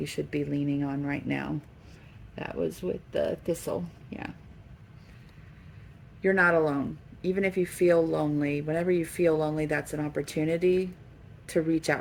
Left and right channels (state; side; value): identical; both; correlation 1.00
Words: should be leaning on right now. That was with the thistle. Yeah. You're not alone. Even if you feel lonely, whenever you feel lonely, that's an opportunity to reach